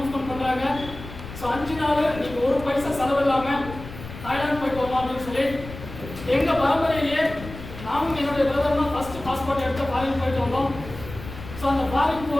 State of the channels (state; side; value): noise; left; rumble, 13 dB below the sound